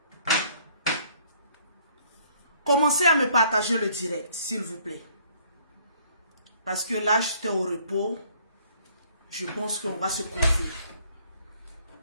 Commencez à me partager le direct, s'il vous plaît. Parce que là, j'étais au repos. Je pense qu'on va se confier.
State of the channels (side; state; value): both; inverted; correlation -0.61